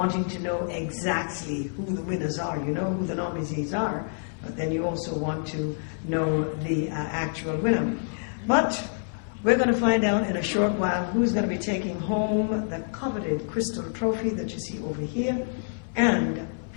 to know exactly who the winners are. You know who the nominees are, but then you also want to know the actual winner. But we're going to find out in a short while who's going to be taking home the coveted crystal trophy that you see over here, and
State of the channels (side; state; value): right; silent; 59 dB below the other